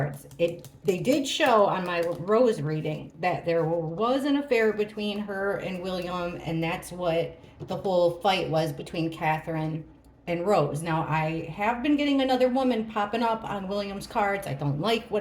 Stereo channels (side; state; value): both; identical; correlation 1.00